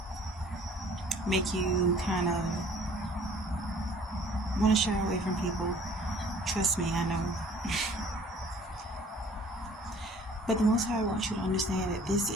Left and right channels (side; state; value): both; normal; correlation 0.53